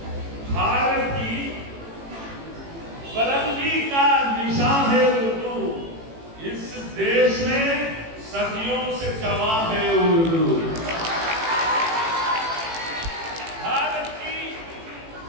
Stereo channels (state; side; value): late; left; 18 ms